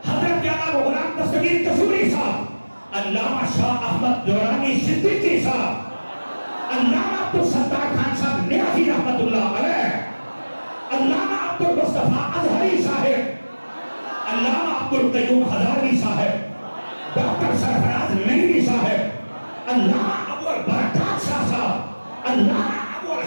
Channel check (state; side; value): inverted; both; correlation -1.00